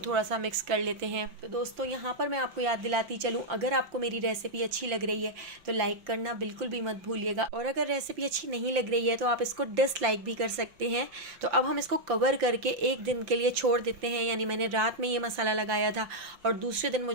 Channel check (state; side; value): late; left; 5.8 ms